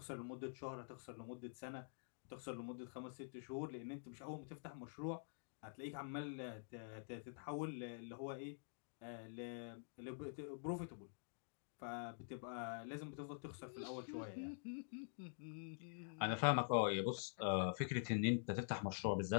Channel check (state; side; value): silent; right; digital silence